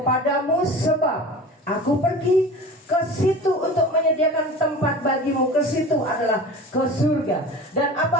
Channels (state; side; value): normal; both; correlation 0.36